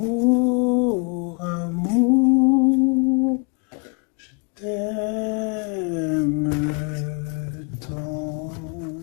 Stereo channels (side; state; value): right; quieter; 34.5 dB